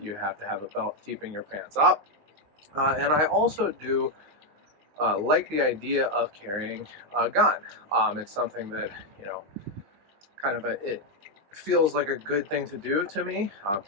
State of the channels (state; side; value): late; left; 20 ms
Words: have to have a belt keeping your pants up. And I also do like the idea of carrying a gun. It's something that, it feels like a good thing to do to me,